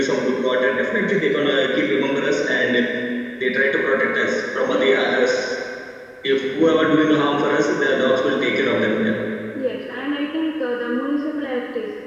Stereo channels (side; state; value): both; identical; correlation 1.00